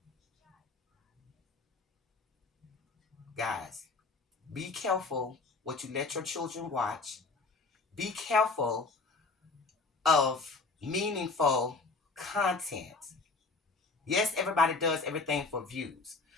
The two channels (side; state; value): right; quieter; 4.0 dB